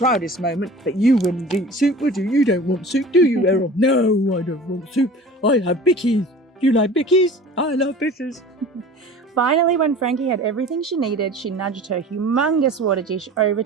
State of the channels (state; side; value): normal; both; correlation 0.41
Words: moment, but you wouldn't eat soup, would you? You don't want soup, do you, Errol? No, I don't want soup. I have bickies. Do you like bickies? I love bitters. Finally, when Frankie had everything she needed, she nudged her humongous water dish over